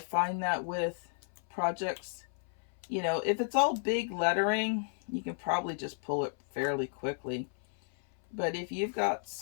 find that with projects, if it's all big lettering, you can probably just pull it fairly quickly. But if you've got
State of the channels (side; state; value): right; silent; 56 dB below the other